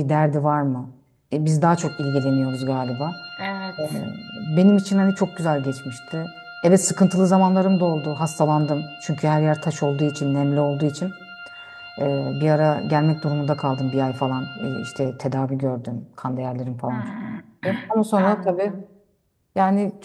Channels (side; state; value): both; identical; correlation 1.00